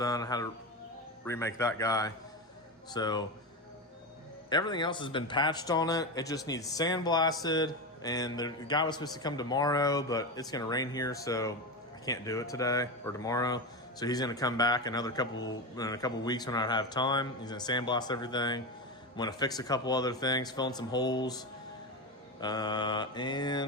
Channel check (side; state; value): both; normal; correlation 0.18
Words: I had to remake that guy. So everything else has been patched on it. It just needs sandblasted, and the guy was supposed to come tomorrow, but it's gonna rain here, so I can't do it today or tomorrow. So he's gonna come back in a couple weeks when I have time. He's gonna sandblast everything. I'm gonna fix a couple other things, fill in some holes.